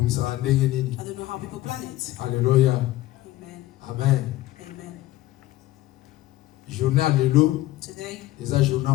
ndenge nini. I don't know how people plan it. Alléluia. Amen. Amen. Amen. Journée à lelo, Today eza journée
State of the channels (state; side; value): quieter; right; 16.4 dB